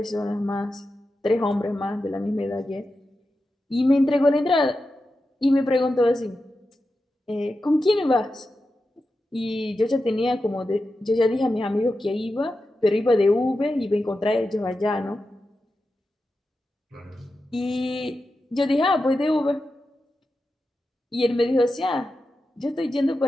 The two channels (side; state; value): both; normal; correlation 0.91